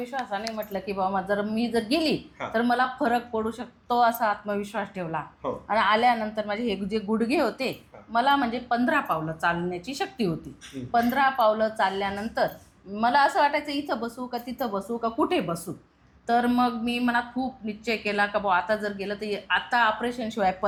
म्हटलं की बाबा जर मी जर गेली हा. तर मला फरक पडू शकतो असा आत्मविश्वास ठेवला. हो. आणि आल्यानंतर माझे हे जे गुडघे होते मला म्हणजे 15 पावलं चालण्याची शक्ती होती. 15 पावलं चालल्यानंतर मला असं वाटायचं इथं बसू का तिथं बसू का कुठे बसू. तर मग मी मनात खूप निश्चय केला का बुवा आता जर गेलं तर आता ऑपरेशनशिवाय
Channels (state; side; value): identical; both; correlation 1.00